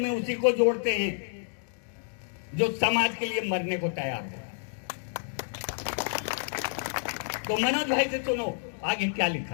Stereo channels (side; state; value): right; silent; digital silence